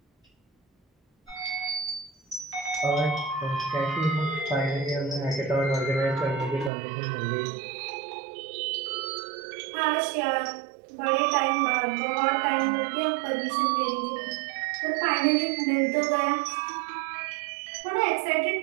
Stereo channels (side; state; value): left; drops out; at 6.7 s